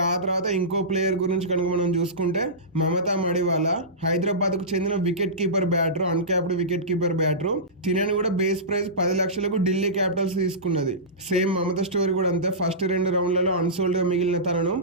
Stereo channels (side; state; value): both; normal; correlation -0.20